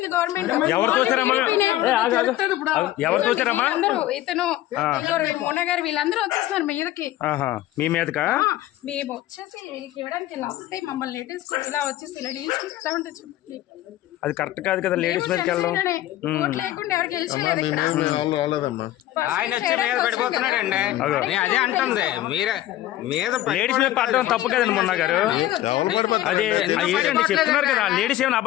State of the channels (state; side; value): quieter; right; 14.5 dB